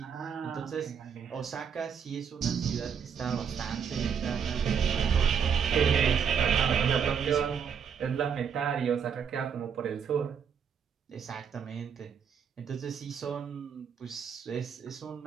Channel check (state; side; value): quieter; left; 7.1 dB